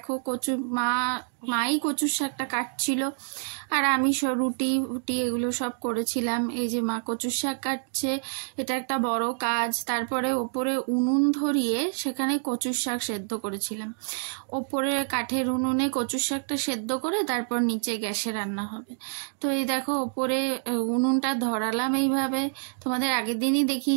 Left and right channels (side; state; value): left; silent; digital silence